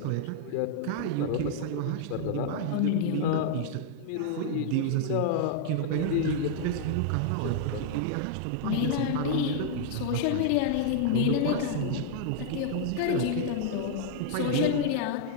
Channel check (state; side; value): different; both; correlation -0.01